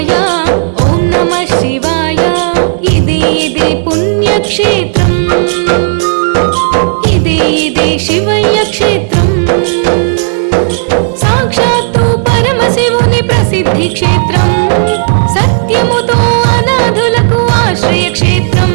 ఓం నమః శివాయ. ఇదే పుణ్యక్షేత్రం. ఇదే శివయ్య క్షేత్రం. సాక్షాత్తు పరమశివుని ప్రసిద్ధి క్షేత్రం. సత్యముతో అనాథులకు ఆశ్రయ క్షేత్రం.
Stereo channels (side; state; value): left; silent; digital silence